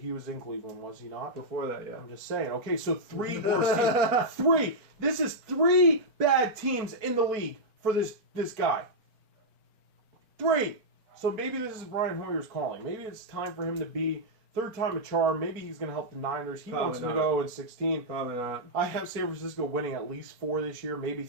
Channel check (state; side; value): late; left; 4.4 ms